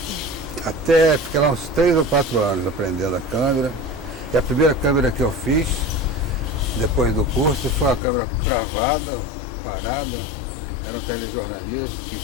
Fiquei lá uns 3 ou 4 anos aprendendo a câmera. E a primeira câmera que eu fiz depois do curso foi uma câmera travada, parada, era um telejornalismo que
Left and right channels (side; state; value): right; drops out; at 8.0 s